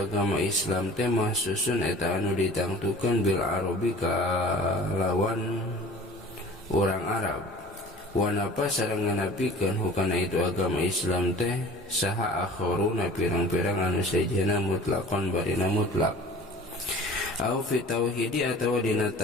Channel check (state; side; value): normal; both; correlation 0.44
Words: Islam teh mahsusun eta anu ditangtukeun bil arabi kalawan orang Arab. Wanapa sareng nganapikeun hukana itu agama Islam teh saha akharuna pirang-pirang anu sajana mutlaqan barina mutlak au fi tauhidi atawa dina